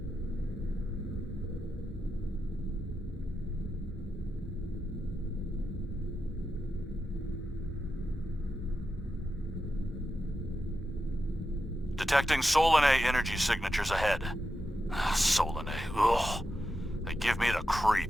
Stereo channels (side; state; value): both; normal; correlation 0.88